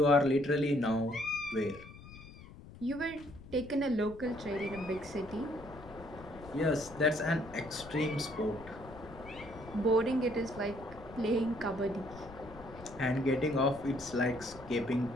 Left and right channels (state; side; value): noise; left; rumble, 17 dB below the sound